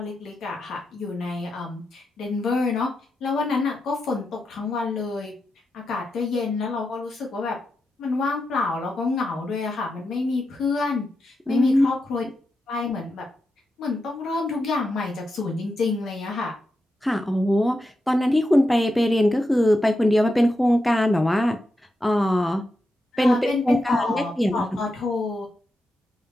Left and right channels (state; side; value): normal; both; correlation 0.87